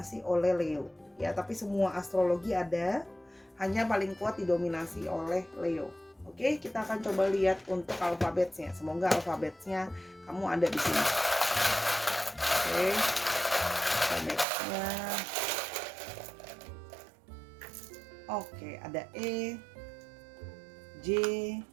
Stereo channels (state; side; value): drops out; left; at 14.5 s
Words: oleh Leo. Ya, tapi semua astrologi ada, hanya paling kuat didominasi oleh Leo. Oke, kita akan coba lihat untuk alfabetnya. Semoga alfabetnya kamu ada di sini. Oke, alfabetnya. Oke, ada E, J,